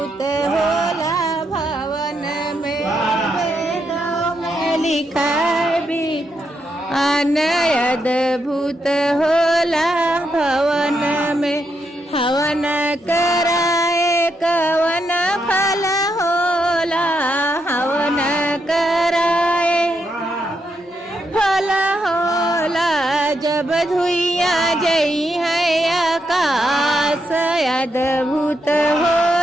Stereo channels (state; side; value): normal; both; correlation 0.81